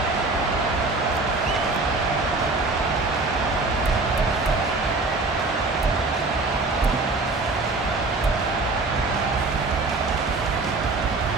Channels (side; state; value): left; quieter; 3.4 dB